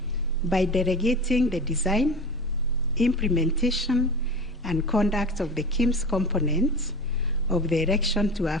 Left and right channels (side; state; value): both; normal; correlation 0.33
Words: by delegating the design, implementation, and conduct of the KIMS components of the election to a